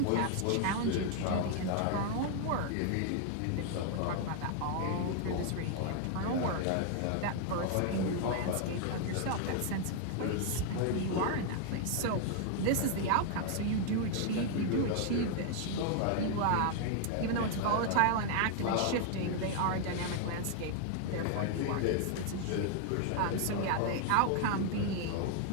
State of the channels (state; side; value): different; both; correlation 0.00